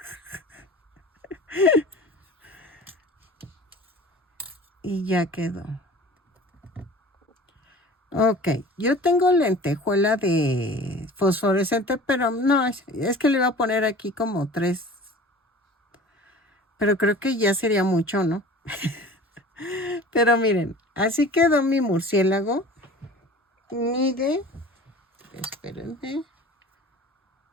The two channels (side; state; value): both; normal; correlation 0.41